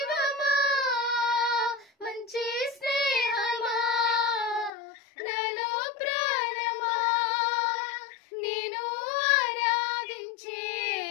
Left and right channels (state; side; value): drops out; right; at 4.7 s